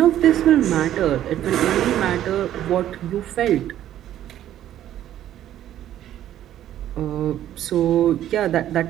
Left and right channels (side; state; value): left; quieter; 11.9 dB